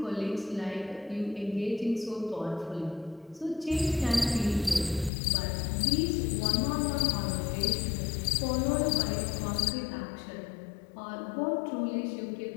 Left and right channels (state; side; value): drops out; right; at 5.1 s